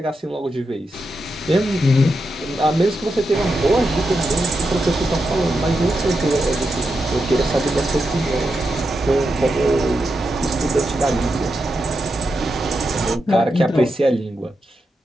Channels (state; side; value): normal; both; correlation 0.86